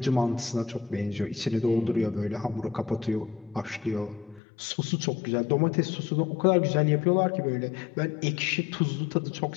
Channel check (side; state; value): right; drops out; at 4.4 s